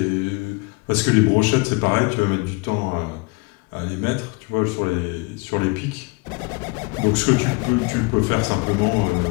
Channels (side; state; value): right; quieter; 28.1 dB